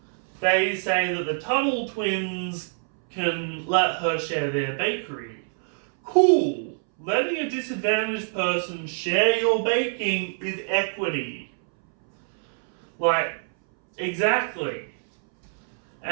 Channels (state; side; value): silent; left; 62 dB below the other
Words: they say that the Tuttle Twins can let her share their bakery. Cool! Letting a disadvantaged person share your baking is equity. Like, exactly.